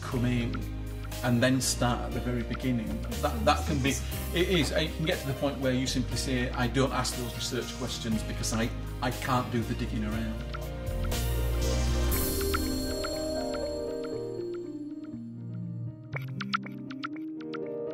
come in and then start at the very beginning, that can be, it can get to the point where you simply say, I don't ask those research questions because I can't do the digging around.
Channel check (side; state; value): both; identical; correlation 1.00